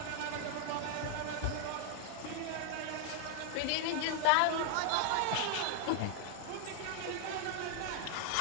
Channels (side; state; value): both; different; correlation 0.00